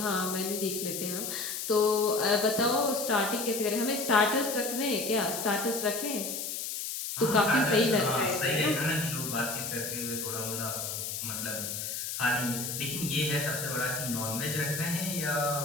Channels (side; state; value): left; noise; hiss, 4 dB below the sound